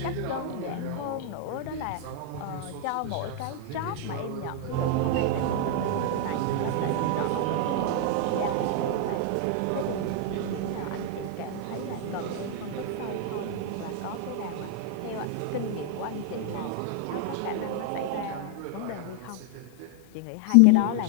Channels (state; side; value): different; both; correlation 0.00